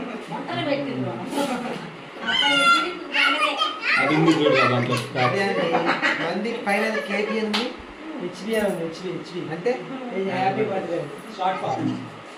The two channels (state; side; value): identical; both; correlation 1.00